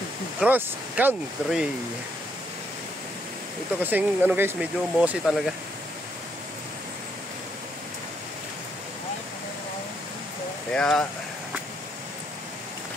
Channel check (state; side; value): normal; both; correlation 0.74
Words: Cross Country. Ito kasing ano guys, medyo mossy talaga. Kaya